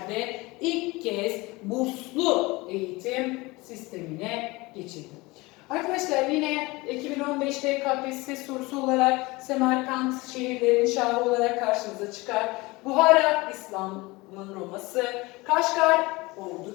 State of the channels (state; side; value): quieter; right; 22.7 dB